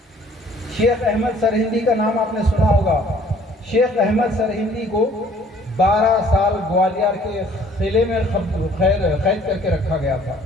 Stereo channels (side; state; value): both; normal; correlation 0.56